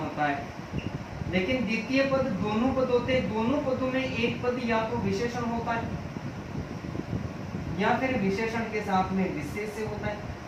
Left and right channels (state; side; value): identical; both; correlation 1.00